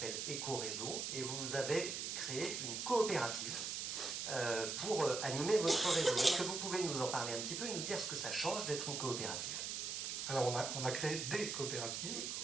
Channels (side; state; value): right; noise; hiss, 3 dB below the sound